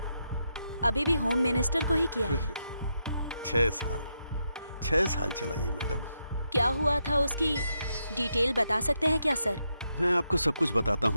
अभी भी होम मिनिस्टर को ही किया है। 6 साल चला ये मैडम। क्या हुआ था उसकी डिटेल बता सकते हैं क्या सर? मैं आपको सब कुछ बताता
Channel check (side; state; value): both; inverted; correlation -0.82